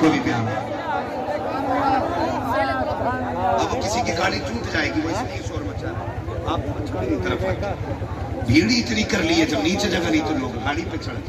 को भी प्यारा। अब किसी की गाड़ी टूट जाएगी, वो इसलिए शोर मचा रहा है। आप तरफ भीड़ इतनी कर ली है, जब नीचे जगह नहीं तो लोग गाड़ी पे चढ़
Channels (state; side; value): identical; both; correlation 1.00